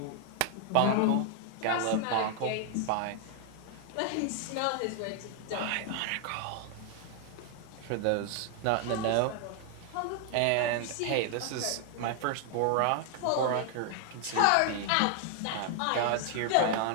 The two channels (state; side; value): different; both; correlation 0.00